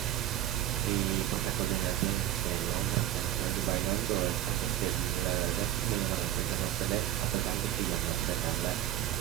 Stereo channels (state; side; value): quieter; left; 12.6 dB